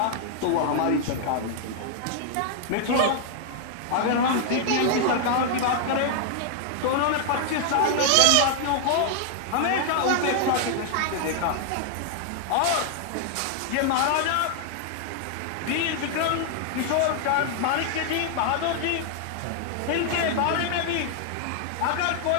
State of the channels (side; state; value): both; different; correlation 0.00